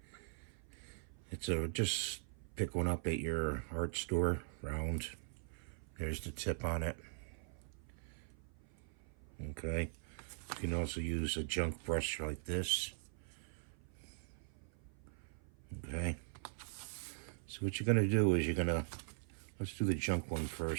It's just pick one up at your art store, round. There's the tip on it. Okay. You can also use a junk brush like this. Okay. So what you're going to do is let's do the junk one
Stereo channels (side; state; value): left; silent; 50 dB below the other